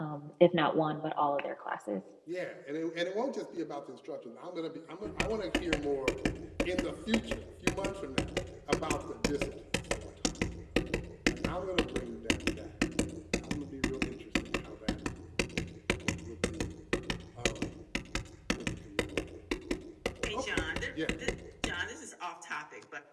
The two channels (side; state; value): both; identical; correlation 1.00